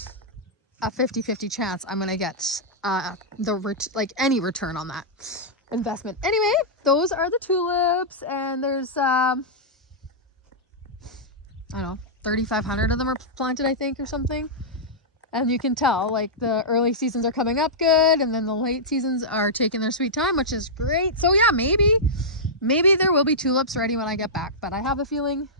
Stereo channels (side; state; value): both; normal; correlation -0.12